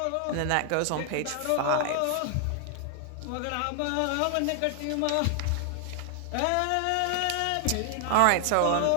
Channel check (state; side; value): different; both; correlation 0.00